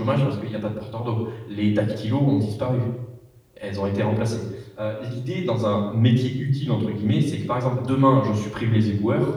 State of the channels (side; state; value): both; identical; correlation 1.00